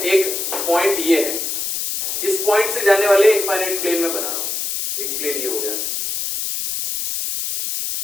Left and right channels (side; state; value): left; noise; hiss, 3 dB below the sound